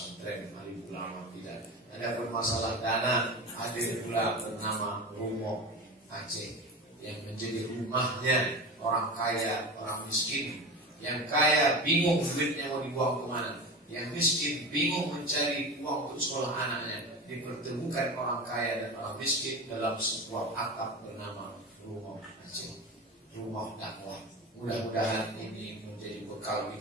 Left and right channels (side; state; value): both; normal; correlation 0.27